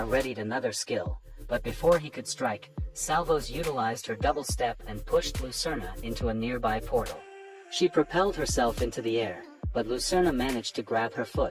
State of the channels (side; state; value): both; identical; correlation 1.00